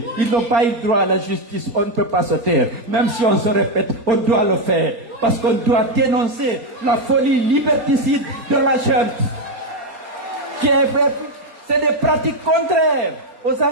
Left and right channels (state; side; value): late; left; 4.3 ms